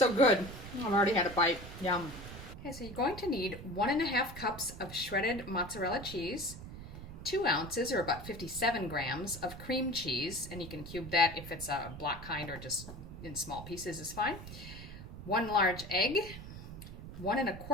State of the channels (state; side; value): noise; right; rumble, 12 dB below the sound